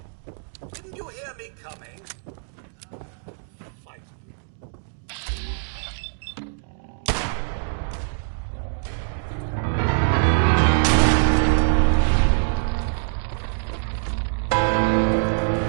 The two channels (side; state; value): left; silent; digital silence